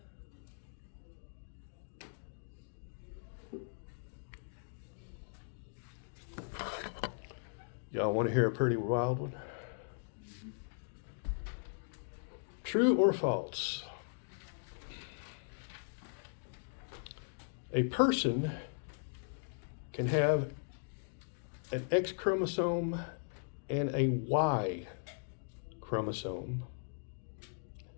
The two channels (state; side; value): silent; right; digital silence